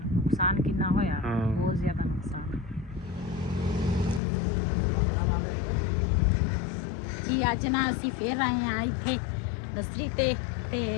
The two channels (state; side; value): drops out; right; at 4.2 s